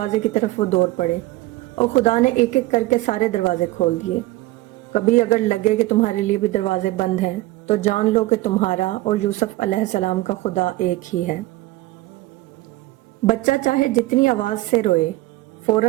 की तरफ वो दौड़ पड़े और खुदा ने एक एक करके सारे दरवाजे खोल दिए। कभी अगर लगे कि तुम्हारे लिए भी दरवाजे बंद हैं तो जान लो कि तुम्हारा और यूसुफ अलैहिस्सलाम का खुदा एक ही है। बच्चा चाहे जितनी आवाज से रोए,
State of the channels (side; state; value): left; quieter; 18.5 dB